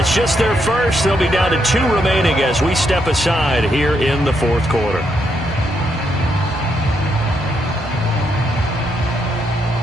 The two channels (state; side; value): normal; both; correlation 0.78